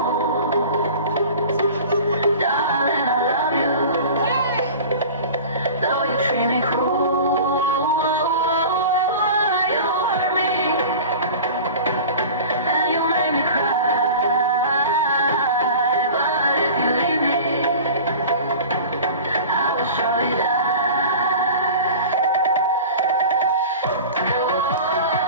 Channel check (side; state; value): both; inverted; correlation -0.38